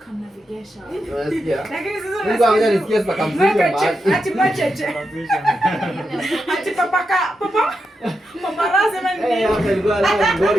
Lakini sasa Mungu anakuja nisikie sasa kamzuri mahali. ati macheche. Ati papa paparazzi mani. Hapa ilikuwa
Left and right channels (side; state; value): both; normal; correlation 0.86